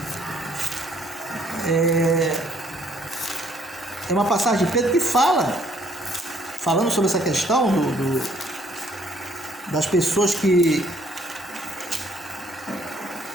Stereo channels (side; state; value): both; normal; correlation 0.64